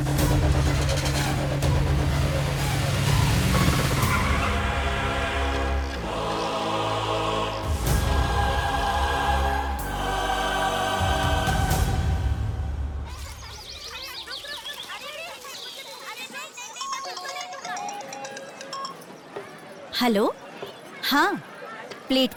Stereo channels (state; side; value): identical; both; correlation 1.00